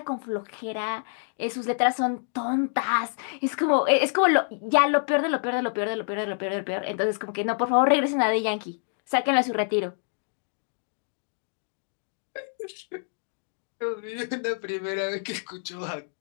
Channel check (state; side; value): silent; right; 60 dB below the other